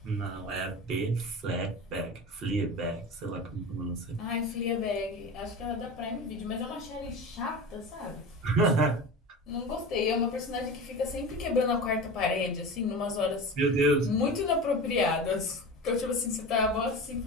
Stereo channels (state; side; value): normal; both; correlation 0.30